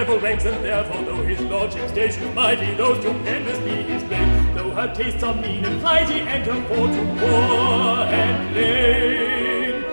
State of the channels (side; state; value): both; inverted; correlation -1.00